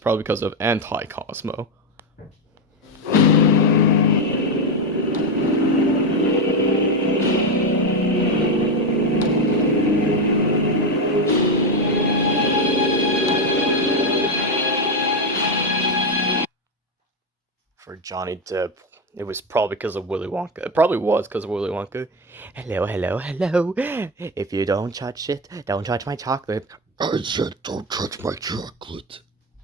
because of Anti-Cosmo. For Johnny Depp, it was probably because of Willy Wonka. It probably was because of Willy Wonka. Hello, hello, hello. If you don't touch it, don't touch my chocolate. I said don't touch my chocolate.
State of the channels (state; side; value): normal; both; correlation 0.11